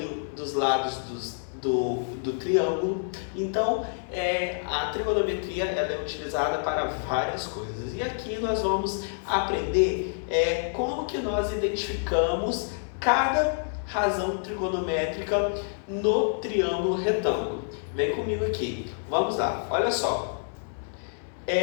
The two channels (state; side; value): silent; right; digital silence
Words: dos lados do triângulo. Então, a trigonometria ela é utilizada para várias coisas. E aqui nós vamos aprender como que nós identificamos cada razão trigonométrica no triângulo retângulo. Vem comigo aqui. Vamos lá. Olha só.